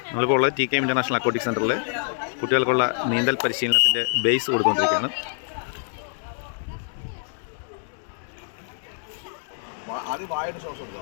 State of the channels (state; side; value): silent; right; digital silence